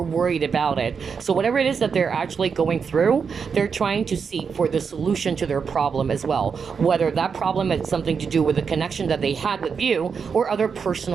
worried about it. So whatever it is that they're actually going through, they're trying to seek for the solution to their problem as well. Whether that problem has something to do with the connection that they had with you, or other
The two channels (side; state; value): left; quieter; 6.0 dB